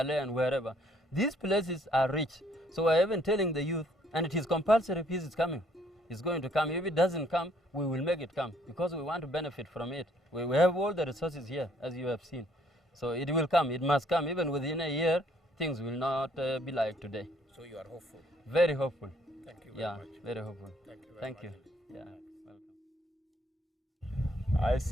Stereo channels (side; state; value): both; normal; correlation 0.65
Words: and wherever. These places are rich. So I have been telling the youth, and it is compulsory peace is coming. It's going to come. If it doesn't come, we will make it come because we want to benefit from it. We have all the resources here, as you have seen. So it will come. It must come. Even within a year, things will not be like today. So you are hopeful? Very hopeful. Thank you very much. Yeah, very hopeful. Thank you very Thank much. you. Yeah, welcome. I